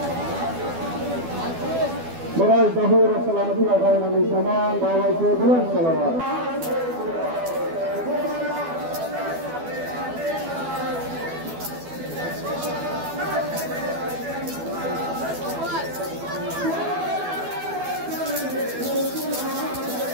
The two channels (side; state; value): left; late; 12 ms